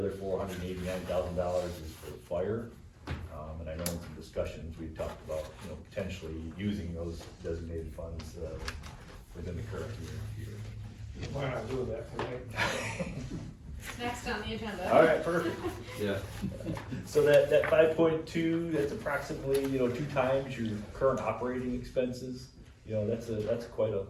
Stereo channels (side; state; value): both; identical; correlation 1.00